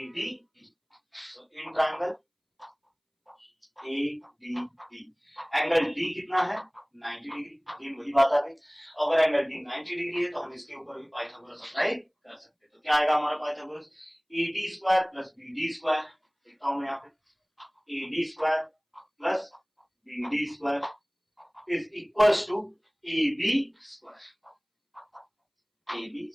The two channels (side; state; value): both; identical; correlation 1.00